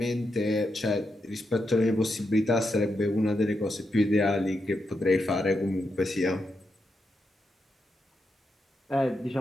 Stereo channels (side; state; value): both; normal; correlation 0.85